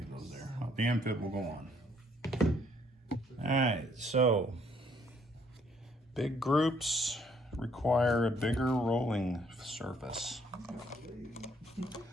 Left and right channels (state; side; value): normal; both; correlation 0.65